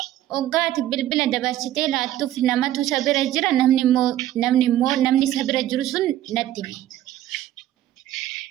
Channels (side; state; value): left; quieter; 13.1 dB